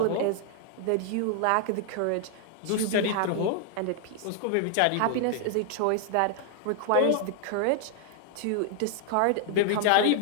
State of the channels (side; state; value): both; different; correlation 0.00